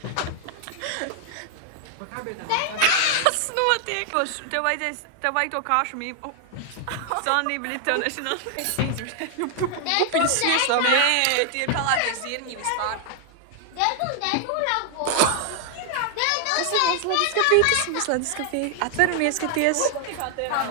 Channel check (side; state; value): both; different; correlation 0.00